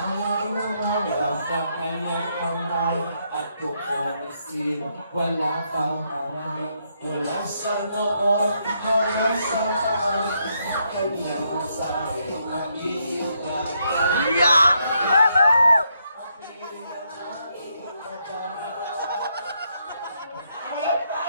na wala sa kanyang kamay, at kukumisin, wala pang away, wala sa noon, wala sa away, kanyang masahe, mag-iibigay.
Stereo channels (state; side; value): inverted; both; correlation -0.77